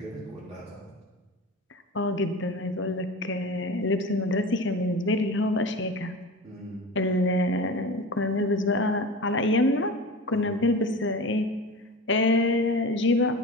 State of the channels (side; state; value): both; normal; correlation 0.31